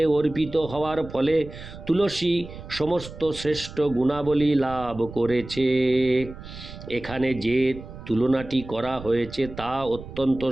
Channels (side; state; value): right; noise; rumble, 14 dB below the sound